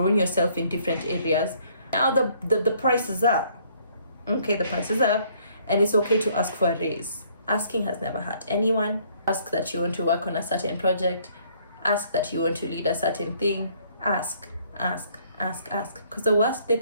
yourself in different areas. Now the price is up. Okay, the price is up, and it's okay to ask for a raise. Asking has never hurt anyone. Ask that you want to work on a certain project. Ask that you want to lead a certain thing. Ask. Because the worst they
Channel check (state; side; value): inverted; both; correlation -0.63